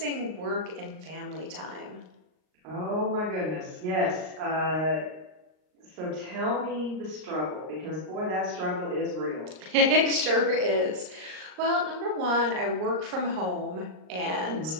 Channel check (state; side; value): late; left; 38 ms